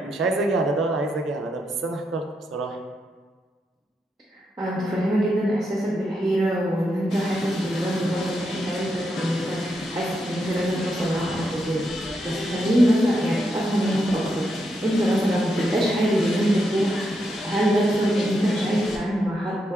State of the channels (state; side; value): normal; both; correlation 0.82